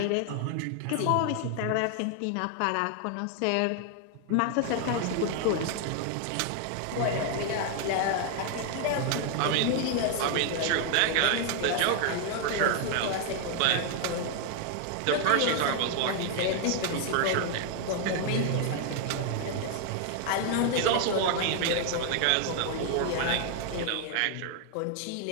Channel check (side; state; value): both; different; correlation 0.00